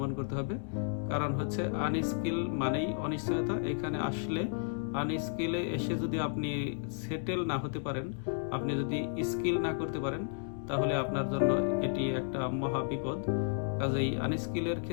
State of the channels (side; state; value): right; silent; digital silence